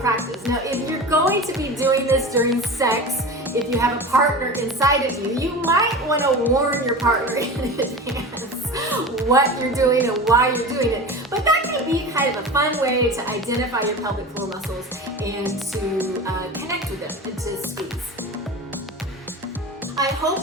Now, if you're going to be doing this during sex, if you have a partner inside of you, you might want to warn your partner in advance what you're doing and why you're doing it. But that can be kind of a fun way to identify your pelvic floor muscles and to connect with them and to squeeze. I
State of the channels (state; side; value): normal; both; correlation 0.31